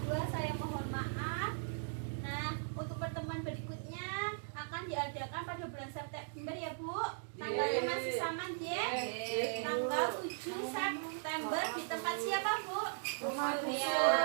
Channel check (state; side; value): silent; left; digital silence